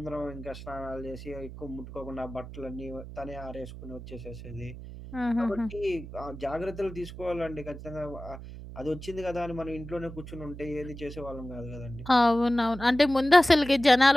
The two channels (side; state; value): right; noise; hum, 12 dB below the sound